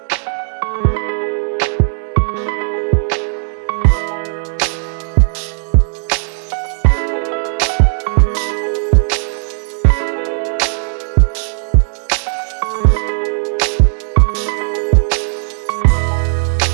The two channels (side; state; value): left; silent; 69 dB below the other